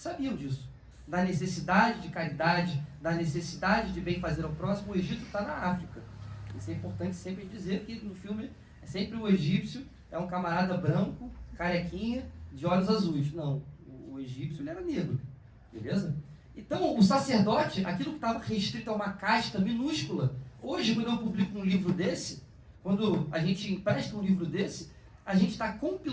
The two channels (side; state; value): both; identical; correlation 1.00